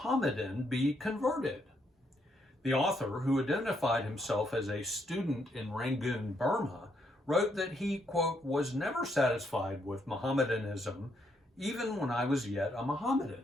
be converted? The author, who identified himself as a student in Rangoon, Burma, wrote that he, quote, was never satisfied with Mohammedanism even when I was yet a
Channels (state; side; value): normal; both; correlation 0.75